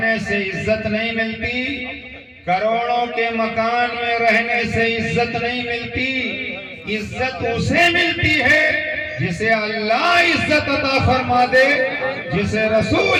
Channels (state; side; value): identical; both; correlation 1.00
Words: سے عزت نہیں ملتی، کروڑوں کے مکان میں رہنے سے عزت نہیں ملتی۔ عزت اسے ملتی ہے جسے اللہ عزت عطا فرما دے، جسے